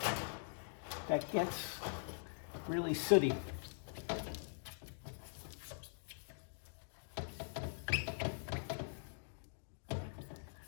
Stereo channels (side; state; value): right; silent; digital silence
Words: that gets really sooty.